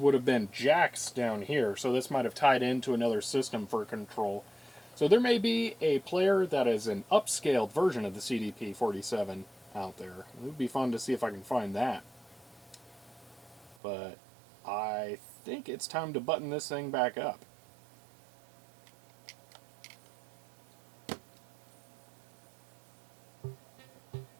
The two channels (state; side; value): drops out; left; at 13.8 s